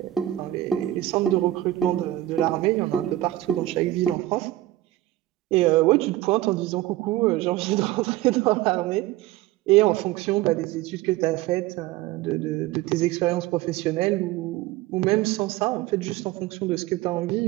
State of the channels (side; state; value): left; quieter; 15.5 dB